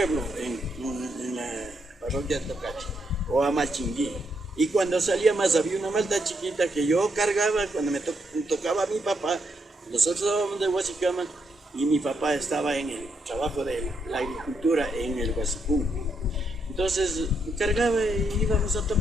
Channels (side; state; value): both; normal; correlation 0.78